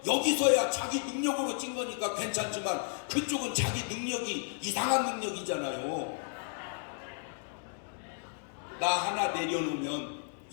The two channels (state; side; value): silent; right; 56 dB below the other